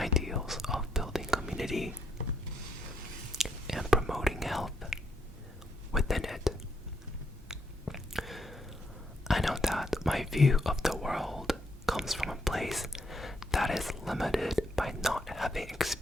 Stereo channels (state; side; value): normal; both; correlation 0.76